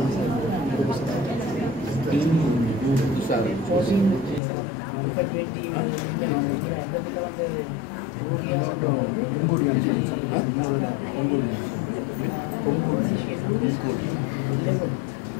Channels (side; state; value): right; drops out; at 4.4 s